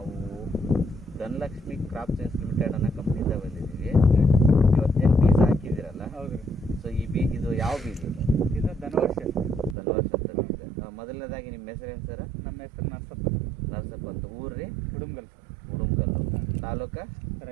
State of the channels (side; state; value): left; drops out; at 9.8 s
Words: ಧನಲಕ್ಷ್ಮಿ ಕ್ರಾಪ್ ಸೈನ್ಸ್ ಲಿಮಿಟೆಡ್ ಅನ್ನೋ ಕಂಪ್ನಿಯಿಂದ ಬಂದಿದ್ದೀವಿ. ಇವತ್ತೇನು ಬೀಜ ಹಾಕಿದ್ದೀರಲ್ಲ, ಹೌದು ರೀ. ಸೊ ಇದು ಯಾವ ಬೀಜ? ಇದು ಧನವರ್ಷ. ಧನವರ್ಷ ಅಂತ ಬೀಜ. ಮೊದಲನೇದಾಗಿ ನಿಮ್ಮ ಹೆಸರು ಏನು ಸರ್? ನಮ್ಮ ಹೆಸರು ನರಸಪ್ಪ. ನರಸಪ್ಪ ಅಂತ. ಊರು ರೀ? ಉಡುಮ್ಗಲ್ ಸರ್. ಉಡುಮ್ಗಲ್ಲು. ತಾಲೂಕು?